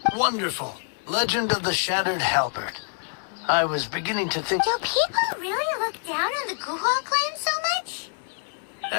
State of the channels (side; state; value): right; silent; digital silence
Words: Wonderful. Legend of the Shattered Halberd. I was beginning to think... Do people really look down on the Guhua clan so much?